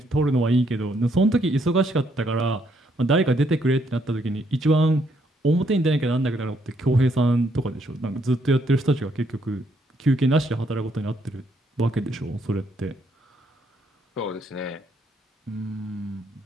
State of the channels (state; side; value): normal; both; correlation 0.72